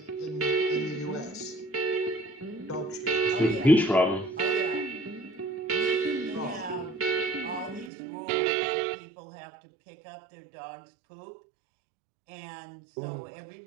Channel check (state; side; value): drops out; left; at 7.9 s